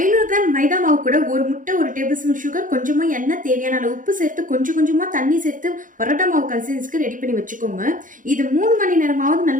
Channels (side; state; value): left; late; 0.38 ms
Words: கிராம் மைதா மாவு கூட ஒரு முட்டை, ஒரு டேபிள் ஸ்பூன் சுகர், கொஞ்சமா எண்ணெய், தேவையான அளவு உப்பு சேர்த்து கொஞ்சம் கொஞ்சமா தண்ணி சேர்த்து பரோட்டா மாவு கன்சிஸ்டன்சிக்கு ரெடி பண்ணி வச்சுக்கோங்க. இது 3 மணி நேரமாவது